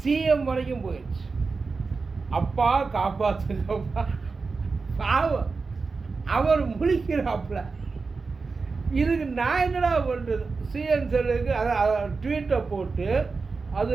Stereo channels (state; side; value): quieter; left; 4.4 dB